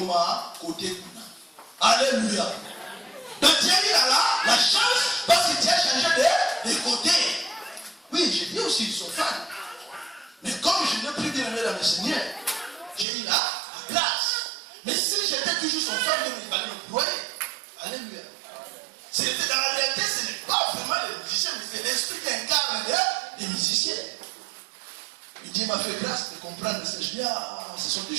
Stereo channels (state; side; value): drops out; left; at 13.1 s